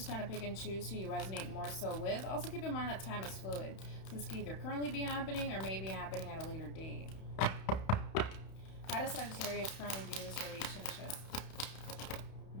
kind of pick and choose who you resonate more so with. Also keep in mind that time is fluid. So this could either currently be happening or may be happening at a later date. How does Sagittarius currently view this relationship?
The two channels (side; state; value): right; late; 31 ms